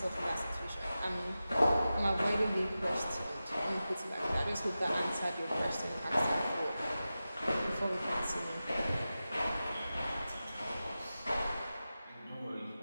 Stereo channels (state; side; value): inverted; both; correlation -0.94